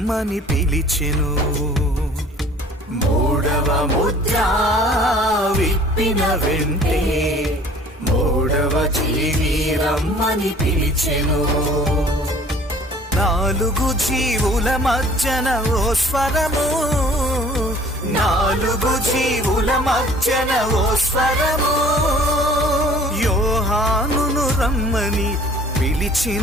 పిలిచెను. మూడవ ముద్ర విప్పిన వెంటే మూడవ జీవి రమ్మని పిలిచెను. నాలుగు జీవుల మధ్యన ఓ స్వరము, నాలుగు జీవుల మధ్యన ఓ స్వరము, యోహానును రమ్మని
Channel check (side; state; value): both; normal; correlation 0.51